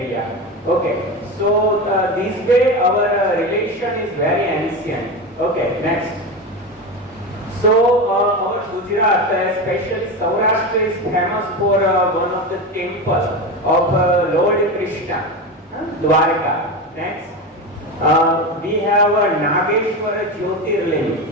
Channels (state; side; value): normal; both; correlation 0.21